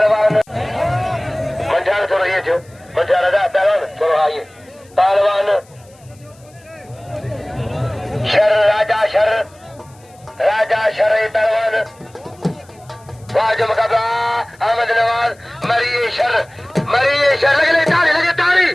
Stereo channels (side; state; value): left; noise; hiss, 29 dB below the sound